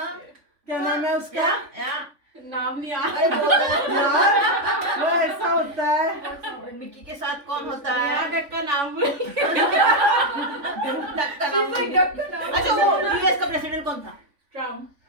नाम नहीं यार, वो ऐसा होता है। मिक्की के साथ कौन होता है? डक का नाम भूल। डक का नाम भूल गया। अच्छा, वो यूएस का प्रेसिडेंट कौन था? ट्रम्प।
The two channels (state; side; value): late; left; 3.5 ms